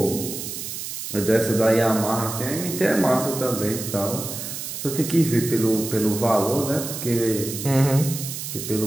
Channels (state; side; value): noise; right; hiss, 7 dB below the sound